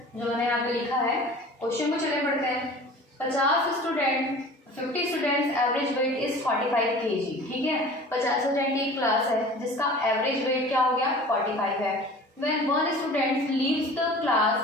जो मैंने यहाँ पे लिखा है, क्वेश्चन को चले पढ़ते हैं। 50 students average weight is 45 kg। ठीक है, 50 स्टूडेंट की एक क्लास है जिसका एवरेज वेट क्या हो गया, 45 है। When one student leaves the class,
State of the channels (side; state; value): both; normal; correlation 0.42